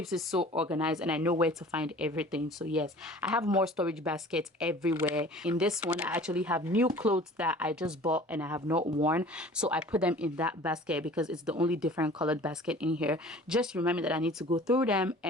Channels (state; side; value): normal; both; correlation 0.45